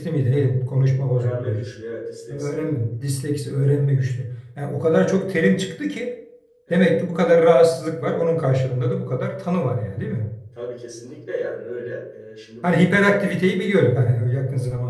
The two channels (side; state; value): both; identical; correlation 1.00